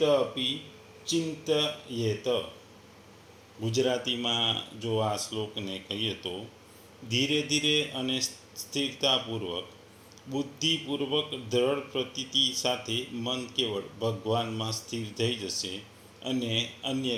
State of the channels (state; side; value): identical; both; correlation 1.00